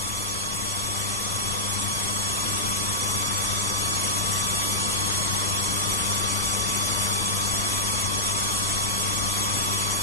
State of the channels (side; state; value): both; normal; correlation -0.05